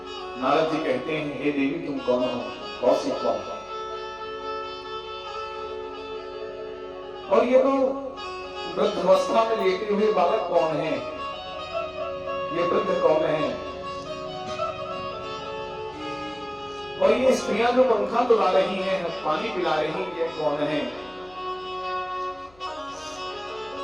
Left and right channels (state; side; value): noise; left; hum, 27 dB below the sound